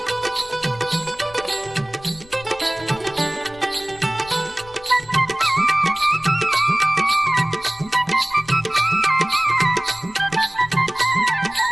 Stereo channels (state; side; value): noise; left; rumble, 22 dB below the sound